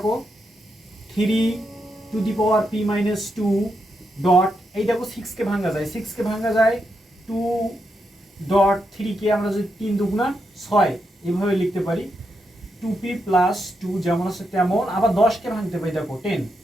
3 to the power p minus 2 dot, এই দেখো 6কে ভাঙা যায়। 6কে ভাঙা যায় 2 ডট 3কে আমরা যদি 3 দুগুণা 6 এভাবে লিখতে পারি। 2p প্লাস 2 যেমন আছে তেমন। আবার 10কে ভাঙতে পাই, দেখো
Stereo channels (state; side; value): normal; both; correlation 0.83